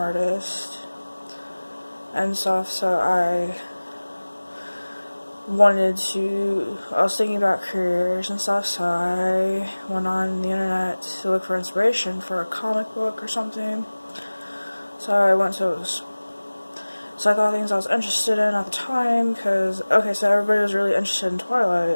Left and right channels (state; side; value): inverted; both; correlation -1.00